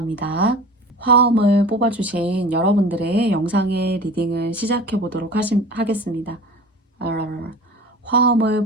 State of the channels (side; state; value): both; normal; correlation 0.38